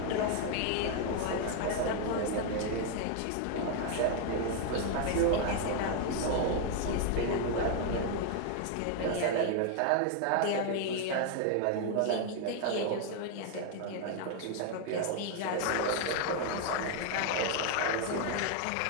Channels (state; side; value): different; both; correlation 0.00